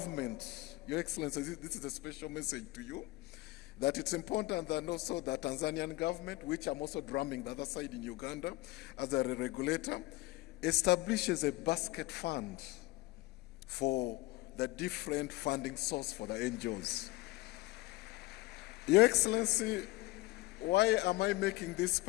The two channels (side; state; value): right; quieter; 19.4 dB